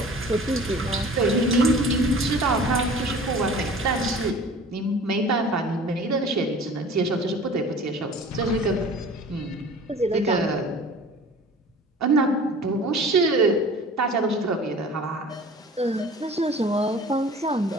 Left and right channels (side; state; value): both; normal; correlation 0.43